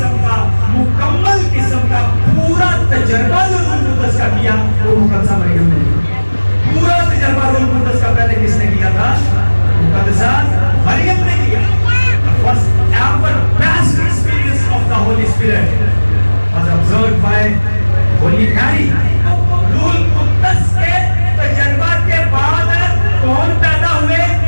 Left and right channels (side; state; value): both; inverted; correlation -1.00